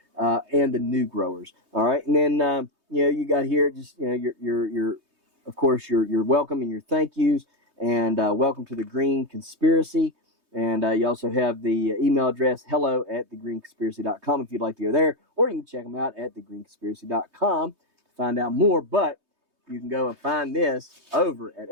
and the new growers. All right, and then you got here just your of course your welcome and your thank yous, and welcome to the Green Conspiracy. And you also have the email address hello@thegreenconspiracy.com if you'd like to go there, or you can check them out at thegreenconspiracy.com to find out more. But you can go and find this over at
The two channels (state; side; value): late; left; 3.2 ms